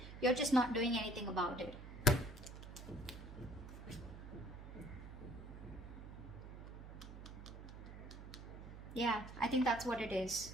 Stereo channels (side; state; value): right; noise; hum, 12 dB below the sound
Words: You're just not doing anything about it. Yeah, I think that's what it is.